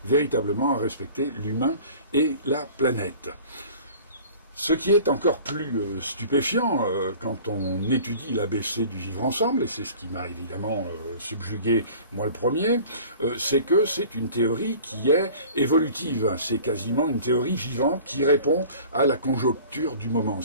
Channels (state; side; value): inverted; both; correlation -0.45